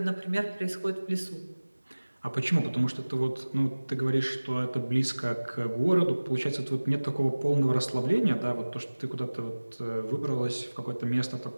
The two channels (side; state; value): both; inverted; correlation -1.00